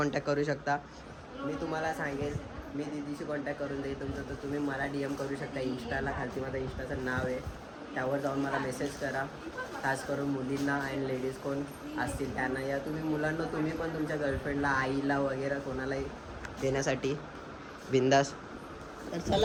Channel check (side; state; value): both; identical; correlation 1.00